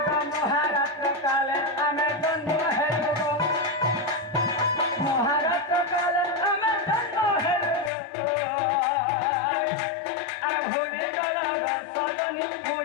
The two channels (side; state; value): right; drops out; at 7.9 s